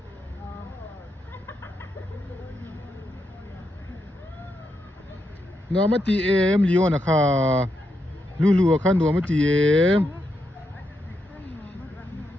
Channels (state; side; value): normal; both; correlation 0.83